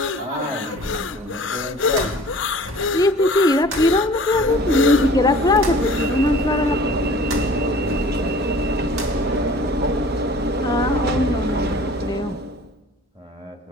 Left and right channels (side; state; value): both; normal; correlation 0.47